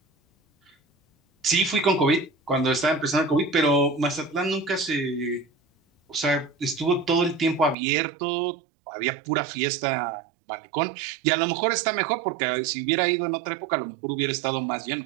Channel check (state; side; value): drops out; left; at 7.8 s